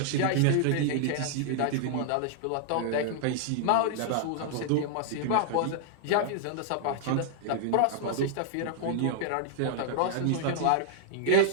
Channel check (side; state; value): both; different; correlation -0.01